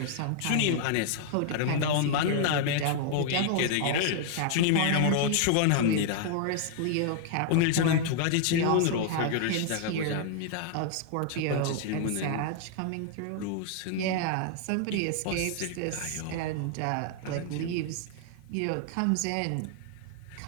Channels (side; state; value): both; different; correlation 0.00